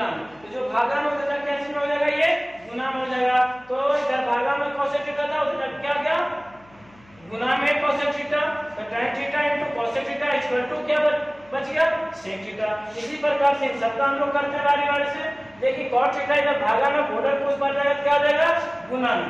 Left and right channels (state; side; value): noise; left; hum, 28 dB below the sound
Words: में, तो जो भागा में उधर क्या चीज में हो जाएगा ये गुना में हो जाएगा। तो इधर भागा में कोसेक थीटा था उधर क्या गया गुना में कोसेक थीटा, तो tan theta into cosec theta equal to क्या बच गया सेक थीटा। इसी प्रकार से सबका हम लोग करते हैं बारी बारी से। देखिए cot थीटा इधर भागा में बॉर्डर को उस पर जाएगा क्या हो जाएगा गुना